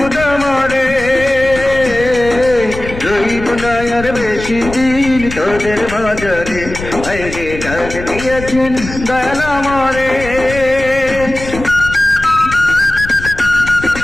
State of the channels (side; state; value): left; noise; rumble, 11 dB below the sound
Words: মারে, রইব না আর বেশি দিন তোদের বাজারে আইরে ডাক দিয়েছেন দয়ালা মারে।